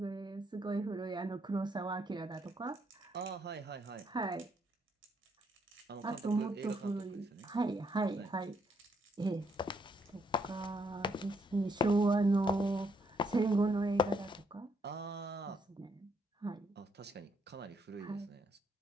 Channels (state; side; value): normal; both; correlation 0.73